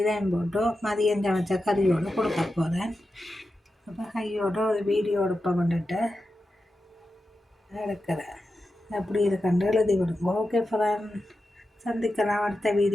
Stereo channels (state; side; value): normal; both; correlation 0.91